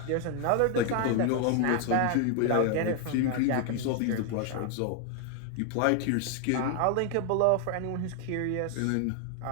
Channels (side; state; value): both; different; correlation 0.00